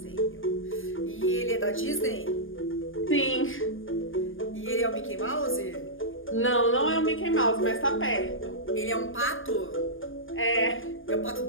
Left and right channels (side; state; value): right; late; 0.58 ms